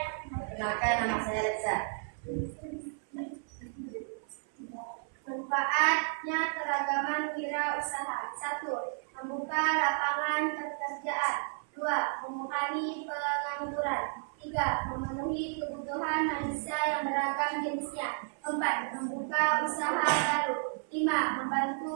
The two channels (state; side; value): silent; left; 56 dB below the other